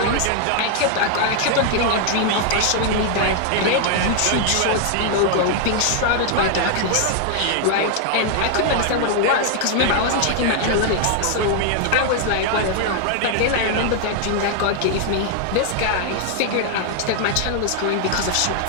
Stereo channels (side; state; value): both; different; correlation 0.00